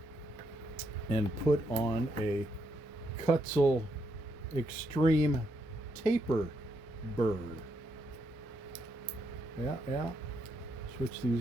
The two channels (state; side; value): normal; both; correlation 0.78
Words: and put on a Kutzell Extreme Taper Burr. Yeah. Switch